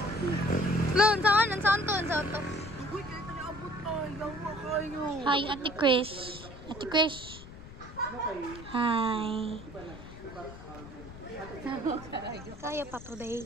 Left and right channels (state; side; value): noise; left; rumble, 15 dB below the sound